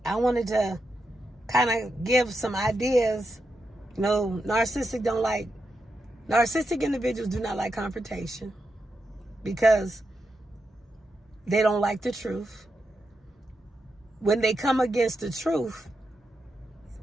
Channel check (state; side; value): normal; both; correlation 0.86